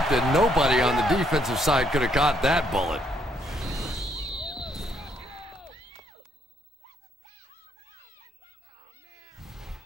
Nobody on the defensive side could have caught that bullet.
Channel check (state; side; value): normal; both; correlation 0.71